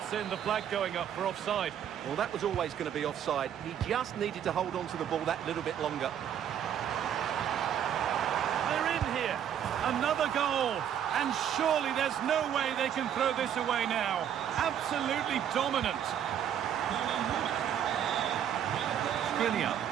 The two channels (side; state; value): left; quieter; 9.5 dB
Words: in the flag going up for offside. Well, that was always going to be offside. He just needed to hold on to the ball that little bit longer. They're in here. Another goal. And surely there's no way they can throw this away now. Absolutely dominant. Skriniar.